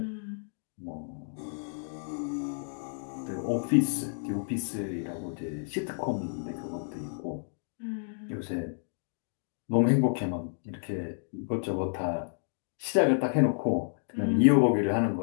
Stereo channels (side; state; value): right; silent; digital silence